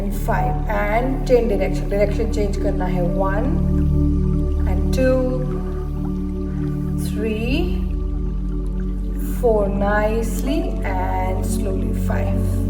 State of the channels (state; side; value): identical; both; correlation 1.00